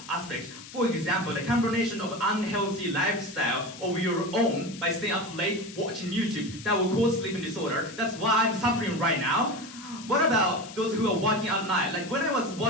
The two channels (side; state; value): left; noise; hiss, 16 dB below the sound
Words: aspect. For example, the combination of unhealthy lifestyle of your own by staying up late watching YouTube that will cause sleeping disorder. That's why I'm suffering right now. What about those who are working at night? Like when I was